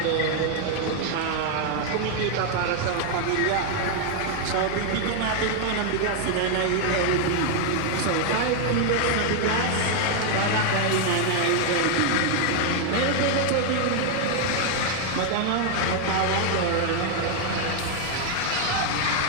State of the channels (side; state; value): both; different; correlation 0.00